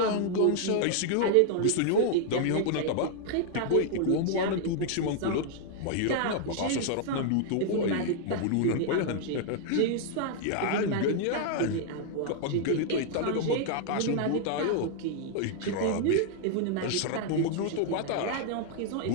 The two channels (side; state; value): both; different; correlation 0.00